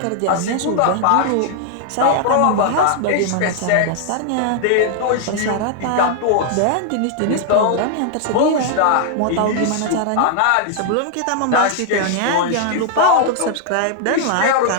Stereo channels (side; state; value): both; different; correlation -0.01